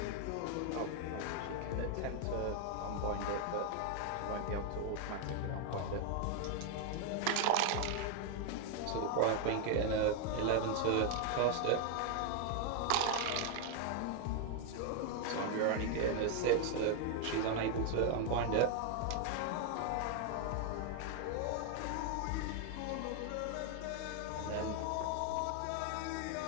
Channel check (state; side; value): different; both; correlation 0.01